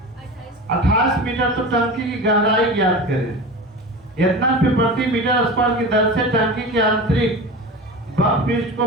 28 मीटर, तो टंकी की गहराई ज्ञात करें। इतना प्रति मीटर स्क्वायर की दर से टंकी के आंतरिक बक पृष्ठ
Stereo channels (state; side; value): normal; both; correlation 0.30